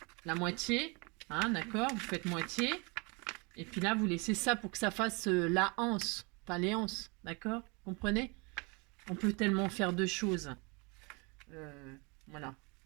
la moitié. Hein, d'accord, vous faites moitié. Et puis là, vous laissez ça pour que ça fasse la anse. Pas les anses, d'accord. Comprenez? On peut tellement faire deux choses. Voilà.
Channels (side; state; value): left; quieter; 30.3 dB